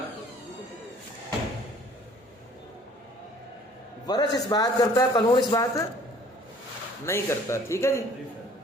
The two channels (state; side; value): normal; both; correlation 0.54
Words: ورش اس بات کرتا ہے, قانون اس بات نہیں کرتا. ٹھیک ہے جی,